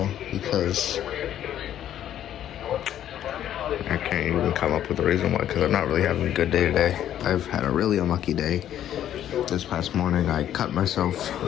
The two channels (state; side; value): quieter; right; 11.1 dB